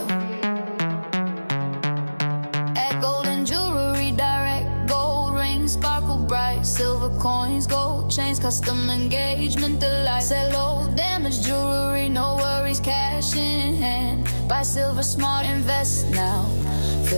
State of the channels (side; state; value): both; inverted; correlation -1.00